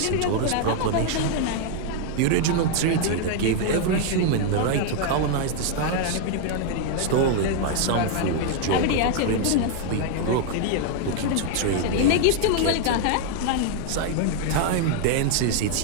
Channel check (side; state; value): both; different; correlation 0.00